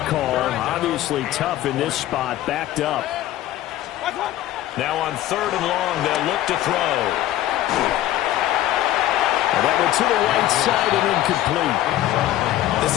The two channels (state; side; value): quieter; right; 13.9 dB